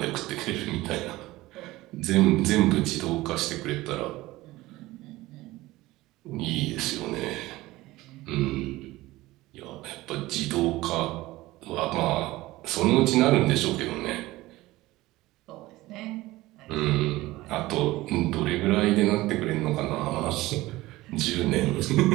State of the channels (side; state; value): left; quieter; 18.4 dB